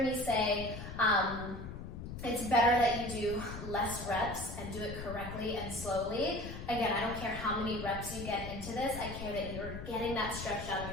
me say, it's better that you do less reps and do it correctly and slowly. Again, I don't care how many reps you get into this. I care that you're getting that stretch down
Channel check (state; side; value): noise; left; rumble, 9 dB below the sound